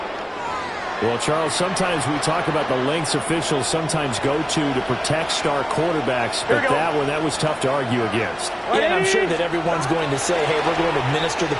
Well, Charles, sometimes we talk about the lengths officials sometimes go to protect star quarterbacks, but that was tough to argue against. Yeah, and I'm sure that everyone's going to say, hey, we're going to administer the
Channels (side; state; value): both; identical; correlation 1.00